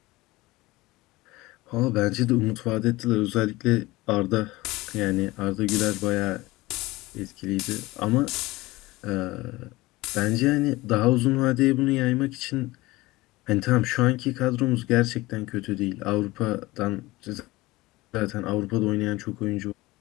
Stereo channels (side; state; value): right; quieter; 20.0 dB